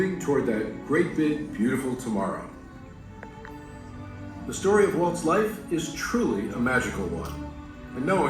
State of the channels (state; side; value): identical; both; correlation 1.00